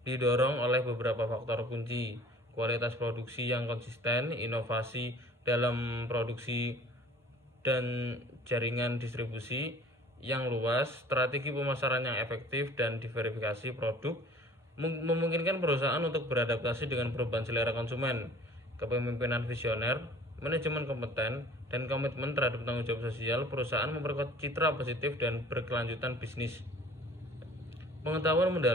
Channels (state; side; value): normal; both; correlation 0.49